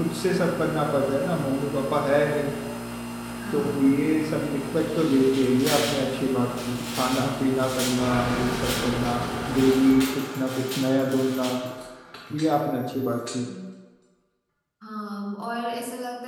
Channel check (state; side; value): identical; both; correlation 1.00